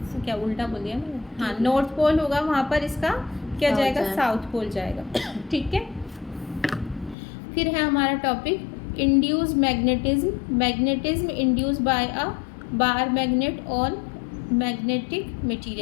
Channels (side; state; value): right; drops out; at 7.2 s